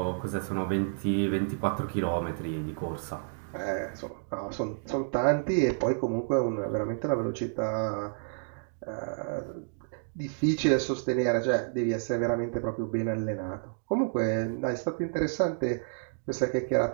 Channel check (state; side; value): silent; left; digital silence